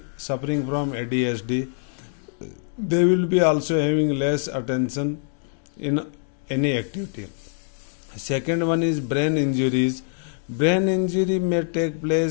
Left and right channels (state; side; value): silent; right; digital silence